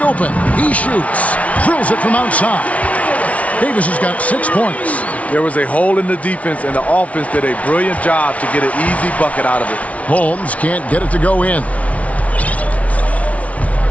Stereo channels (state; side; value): late; right; 0.066 ms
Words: open. He shoots. Drills it from outside. Davis has got 6 points. There was a hole in the defense, and the offense did a brilliant job to get an easy bucket out of it. Holmes can't get it to go in.